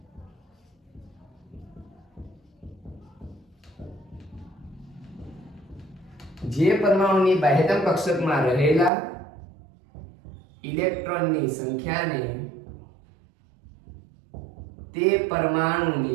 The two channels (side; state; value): left; drops out; at 8.9 s